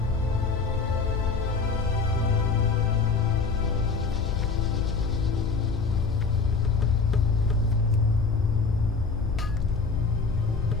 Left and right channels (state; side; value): quieter; right; 4.6 dB